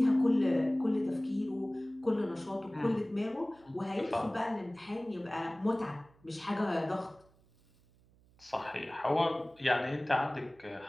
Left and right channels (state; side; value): noise; right; hum, 30 dB below the sound